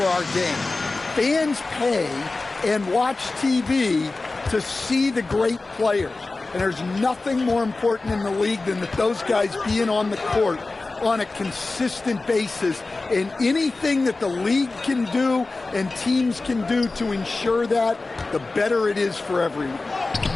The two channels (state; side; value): quieter; right; 3.4 dB